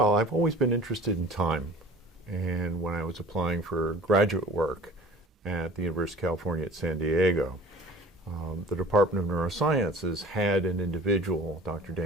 I've always been interested in time, and when I was applying for graduate work at the University of California at San Diego, the Department of Neurosciences had an individual, Dr.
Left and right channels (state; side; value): normal; both; correlation 0.44